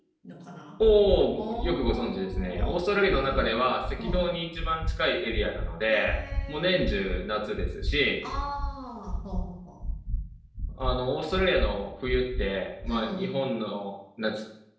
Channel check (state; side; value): identical; both; correlation 1.00